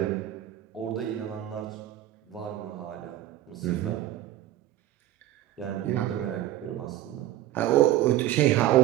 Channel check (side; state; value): left; quieter; 13.6 dB